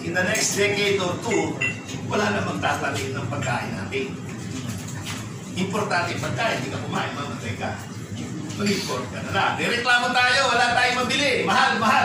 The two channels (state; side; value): identical; both; correlation 1.00